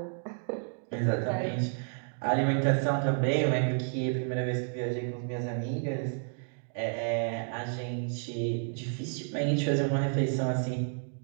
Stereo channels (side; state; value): left; silent; 57 dB below the other